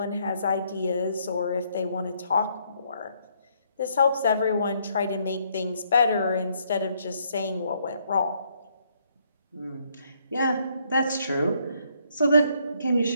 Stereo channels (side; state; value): both; inverted; correlation -0.71